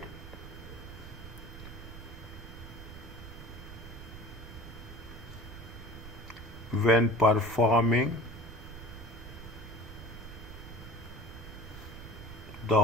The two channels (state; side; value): noise; right; rumble, 13 dB below the sound